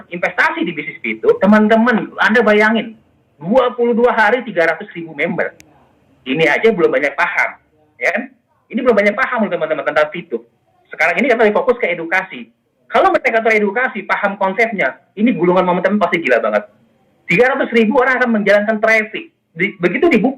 investasi di bisnis itu, teman-teman, Anda bayangin, 22 hari 300.000 member. Ini aja belum banyak paham, ya kan? Ini belum banyak paham teman-teman tentang itu. Sekarang ini kita fokus ke edukasi. Kalau mereka teredukasi, paham konsepnya, ini gulungan momentum pasti gila banget. 300.000 orang akan menjalankan traffic. Begitu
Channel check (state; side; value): identical; both; correlation 1.00